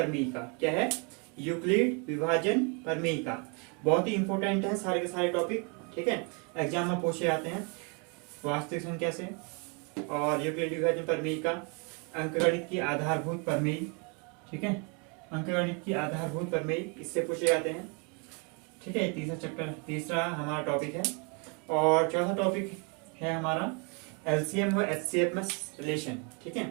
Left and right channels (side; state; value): left; quieter; 33.9 dB